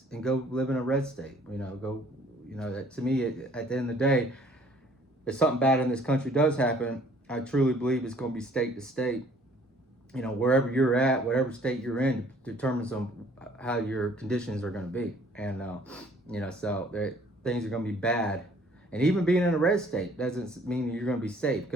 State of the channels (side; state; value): both; normal; correlation 0.57